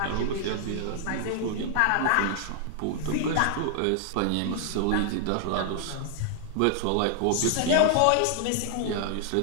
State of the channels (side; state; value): both; different; correlation 0.00